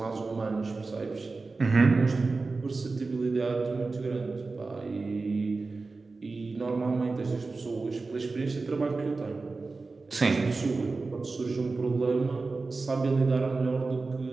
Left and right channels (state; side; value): quieter; left; 3.8 dB